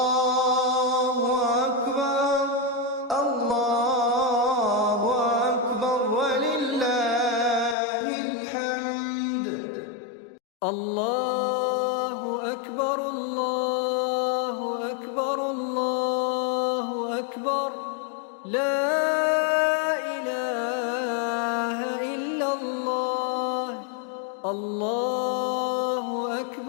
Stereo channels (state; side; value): drops out; right; at 7.8 s